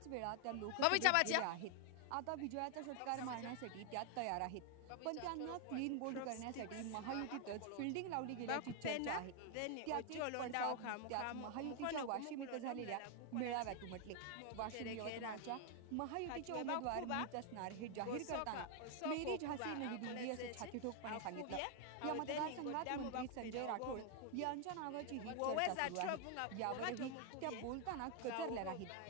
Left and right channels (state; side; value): different; both; correlation 0.00